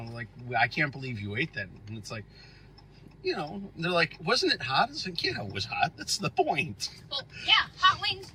like, I can't believe you ate that. And it's like, they're like, wasn't it hot? It's like, yeah, it was hot. That's the point. Well, yeah, hot wings,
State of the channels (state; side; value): identical; both; correlation 1.00